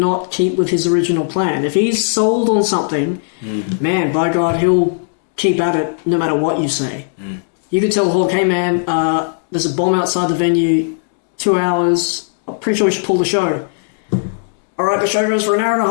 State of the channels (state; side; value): silent; right; digital silence